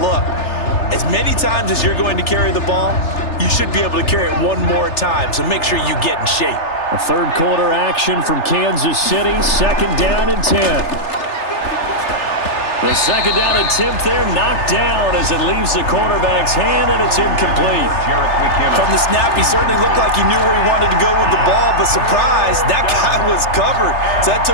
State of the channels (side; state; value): right; late; 3.3 ms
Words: as many times as you're going to carry the ball, you should be able to carry it one more time, so make sure you get in shape. A 3rd quarter action from Kansas City. 2nd down and 10. The second down attempt there knocked down as it leaves the quarterback's hand, and it's incomplete. From the snap, he certainly looked like he knew where he wanted to go with the ball, but surprise, that guy was covered. So that